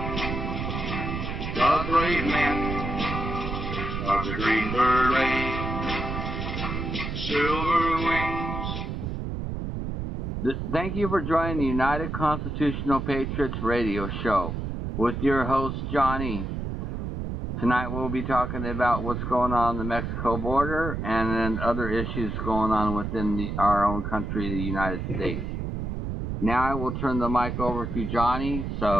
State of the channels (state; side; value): noise; right; rumble, 4 dB below the sound